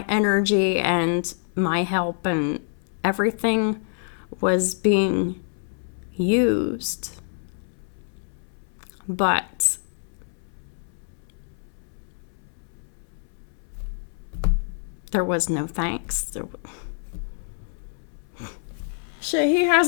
energy and my help and everything was being used. But there was no thanks. Shit, he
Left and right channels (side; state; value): right; silent; 61 dB below the other